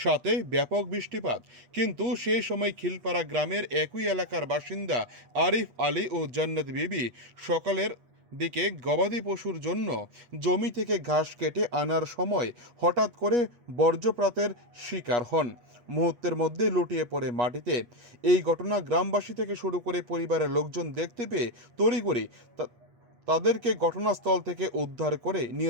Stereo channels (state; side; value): late; left; 8.3 ms